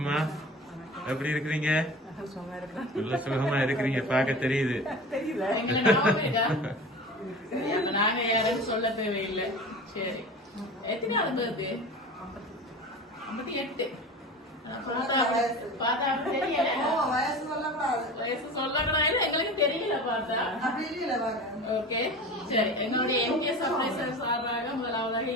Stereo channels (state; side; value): normal; both; correlation 0.34